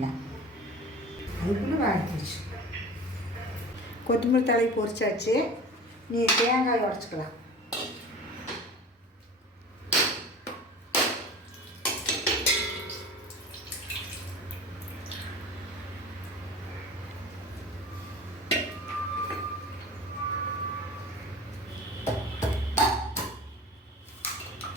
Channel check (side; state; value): both; normal; correlation 0.37